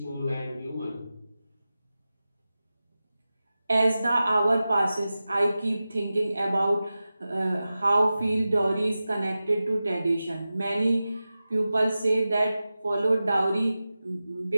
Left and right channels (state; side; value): inverted; both; correlation -0.94